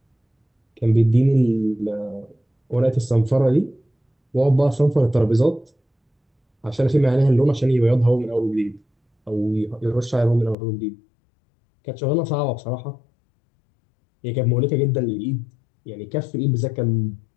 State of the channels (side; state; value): right; drops out; at 10.6 s